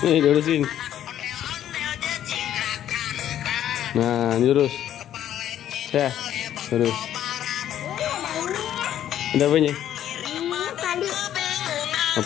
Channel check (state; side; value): quieter; right; 11.1 dB